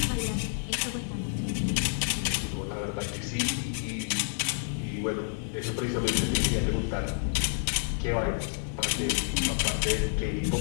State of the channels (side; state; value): right; silent; digital silence